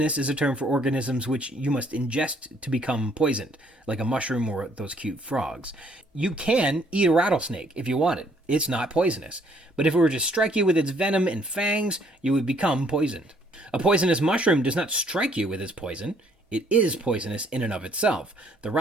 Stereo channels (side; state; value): both; normal; correlation 0.64